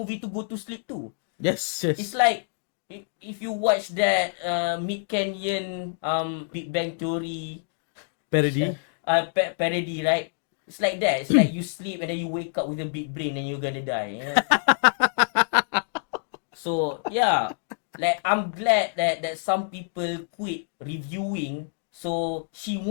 to go to sleep too. Yes. It's like if you watch that Mid Canyon Big Bang Theory Parody. parody, right? It's like that. It's like you sleep and then you wake up with a big brain and you're gonna die. So yeah, like I'm glad that some people quit reviewing, so she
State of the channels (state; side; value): silent; right; digital silence